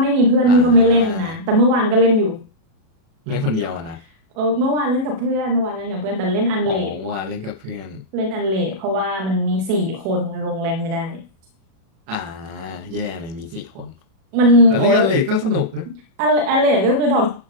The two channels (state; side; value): late; left; 37 ms